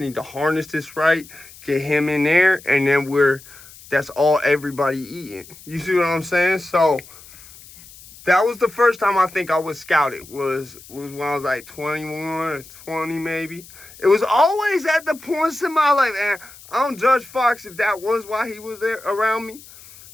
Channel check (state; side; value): noise; left; hiss, 20 dB below the sound